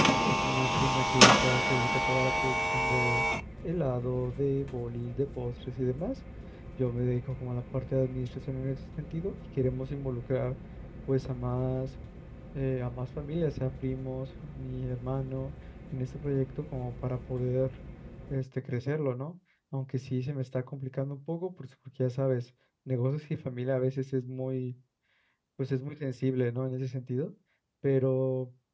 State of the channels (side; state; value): both; identical; correlation 1.00